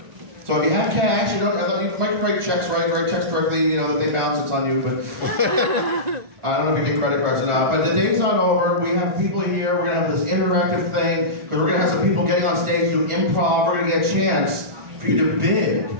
So if you have cash, you don't have, you might write checks, right? Write checks directly, you know, they bounce, it's on you, but I don't know if you get credit cards or not. But the day's not over. We have people here. We're going to have this interactive thing, because we're going to have some people getting on stage, do improv. We're going to get a chance for you to bid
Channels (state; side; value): late; left; 1.4 ms